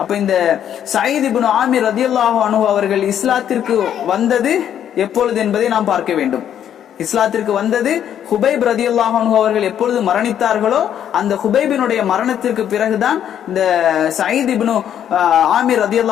அப்ப இந்த சயீத் இப்னு ஆமிர் ரலியல்லாஹு அன்ஹு அவர்கள் இஸ்லாத்திற்கு வந்தது எப்பொழுது என்பதை நாம் பார்க்க வேண்டும். இஸ்லாத்திற்கு வந்தது ஹுபைப் ரலியல்லாஹு அன்ஹு அவர்கள் எப்பொழுது மரணித்தார்களோ அந்த ஹுபைபினுடைய மரணத்திற்கு பிறகுதான் இந்த சயீத் இப்னு ஆமிர்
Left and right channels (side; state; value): right; quieter; 9.8 dB